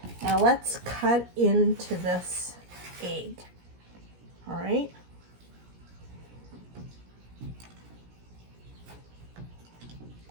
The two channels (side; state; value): left; late; 17 ms